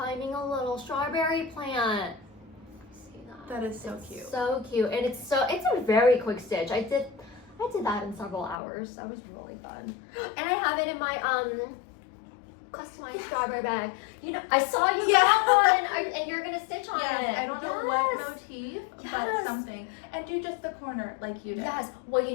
a little strawberry plant. See that? That is so cute. So cute. And it's a very quick stitch. I did that in several hours. That was really fun. And I have it in my customized strawberry bag. You know, I saw you got one, and you're gonna stitch on it. I don't know what motif, but something. And do just the corner like you did. Yes. Well, you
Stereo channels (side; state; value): right; drops out; at 8.6 s